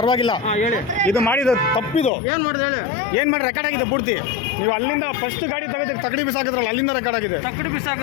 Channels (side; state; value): right; drops out; at 2.1 s